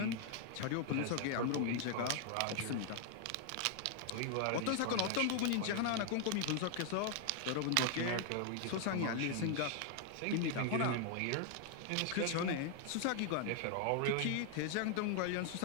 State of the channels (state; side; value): different; both; correlation 0.00